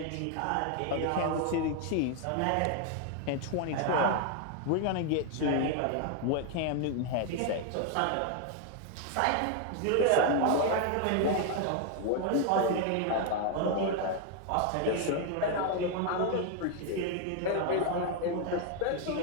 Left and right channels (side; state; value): both; different; correlation 0.01